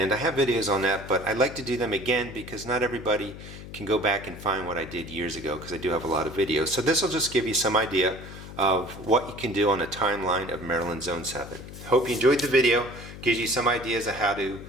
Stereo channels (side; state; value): left; noise; hum, 13 dB below the sound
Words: I have videos on that, but I like to do them again because not everybody can go back and find what I did years ago because I do have a lot of videos. So this will just give you some idea of what you can do on a timeline of Maryland Zone 7. Hope you enjoyed the video. Gives you some ideas of how to